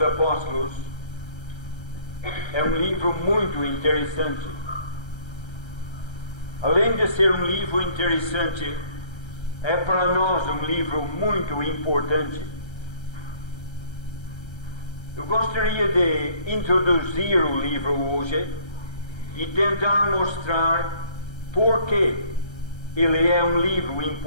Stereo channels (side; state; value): right; late; 1.3 ms